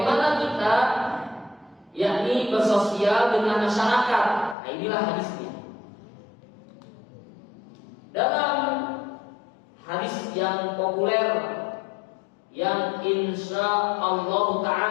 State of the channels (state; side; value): drops out; right; at 4.5 s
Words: kita, yakni bersosial dengan masyarakat. Nah, inilah hadisnya. Dalam hadis yang populer, yang insya Allah